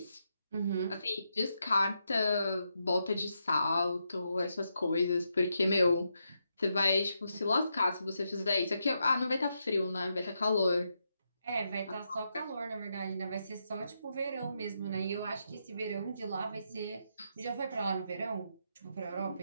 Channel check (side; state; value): both; inverted; correlation -0.83